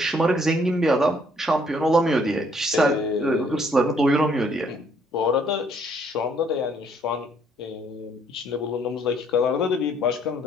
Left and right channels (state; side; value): normal; both; correlation 0.65